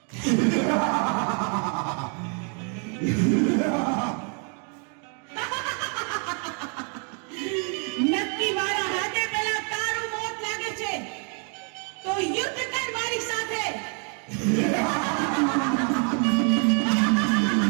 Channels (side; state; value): left; quieter; 39.8 dB